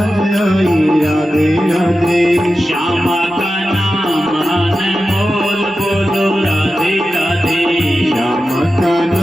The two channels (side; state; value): both; normal; correlation 0.92